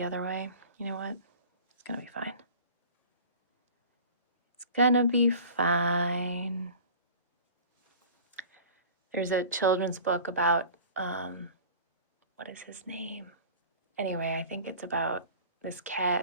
other way, you know what? It's gonna be fine. It's gonna be fine. There's a children's book about, what is his name? Anyway, I think it's about this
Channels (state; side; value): inverted; both; correlation -0.42